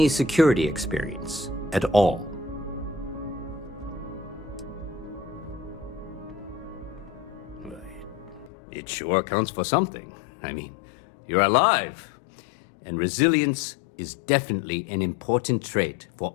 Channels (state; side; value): drops out; right; at 8.5 s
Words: security experience at all? It sure counts for something. I mean, you're alive. And resilience is definitely an important trait for